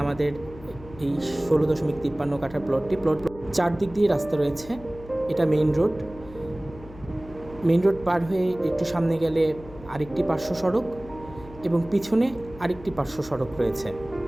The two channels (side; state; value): left; noise; hum, 18 dB below the sound